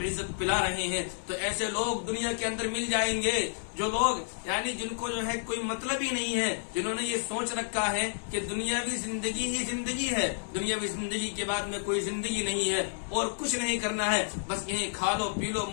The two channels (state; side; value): silent; right; digital silence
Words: پلا رہے ہیں، تو ایسے لوگ دنیا کے اندر مل جائیں گے جو لوگ یعنی جن کو جو ہے کوئی مطلب ہی نہیں ہے، جنہوں نے یہ سوچ رکھا ہے کہ دنیاوی زندگی ہی زندگی ہے، دنیاوی زندگی کے بعد میں کوئی زندگی نہیں ہے اور کچھ نہیں کرنا ہے، بس یہیں کھا لو پی لو